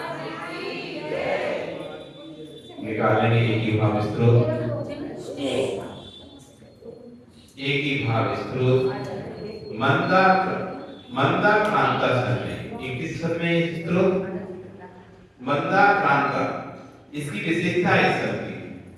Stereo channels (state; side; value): identical; both; correlation 1.00